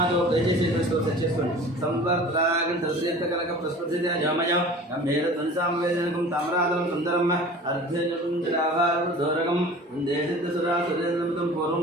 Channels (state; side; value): normal; both; correlation 0.42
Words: दयచేసి స్తోత్రం చేసుకోండి సంవర్తరాగం తృతీయకలక ప్రస్ఫుటిత జామయ గంభీర ధ్వనిసామవేదనకం తామ్రాదనం సుందరం అర్ధజటం జలాభారం దూరకం దేశితసురా సురేంద్రమతం